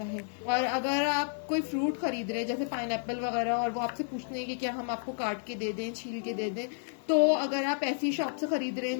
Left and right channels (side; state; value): right; silent; digital silence